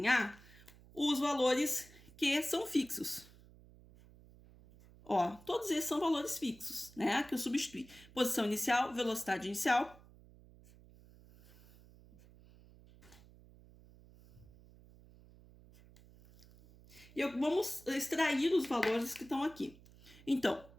os valores que são fixos. Ó, todos esses são valores fixos, né? Que eu substituí. Posição inicial, velocidade inicial. E vamos extrair os valores que estão aqui. Então,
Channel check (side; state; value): right; noise; hum, 23 dB below the sound